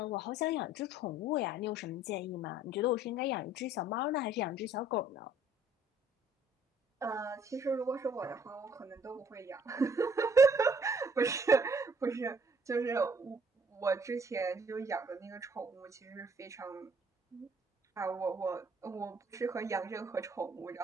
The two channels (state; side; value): normal; both; correlation 0.60